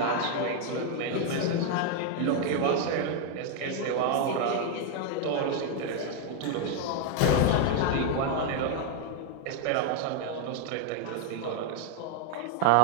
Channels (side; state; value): both; different; correlation 0.01